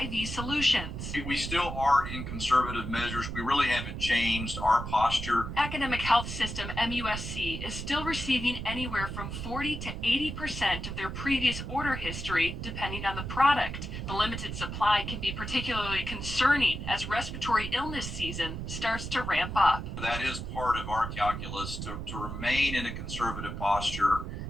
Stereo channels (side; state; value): right; noise; rumble, 6 dB below the sound